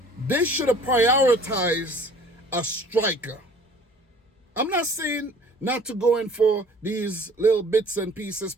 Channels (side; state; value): both; normal; correlation 0.51